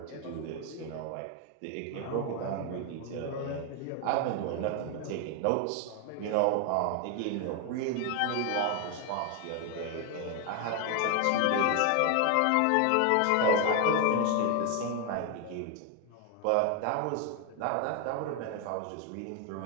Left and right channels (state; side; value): different; both; correlation 0.01